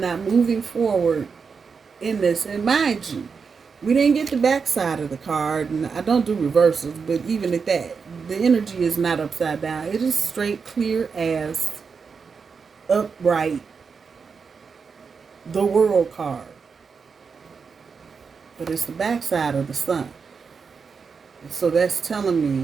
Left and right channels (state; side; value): quieter; left; 5.5 dB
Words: moving forward in this. And mind you, we didn't get the backside of the card, and I don't do reversals, but even at that, the energy is not upside down. It is straight, clear as, upright, the World card. But it's the backside of the Sun. So that's telling